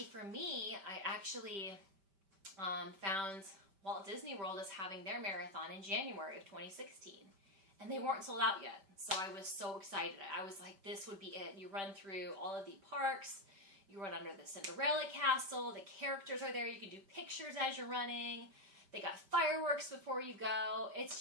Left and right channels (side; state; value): left; late; 5.1 ms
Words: for me, I actually found Walt Disney World is having their marathon in January of 2016. And they weren't sold out yet. So I was so excited. I was like, this would be it. You run through all of the parks. You run under the Cinderella castle. The characters are there. You can do pictures as you're running. They got fireworks before you go.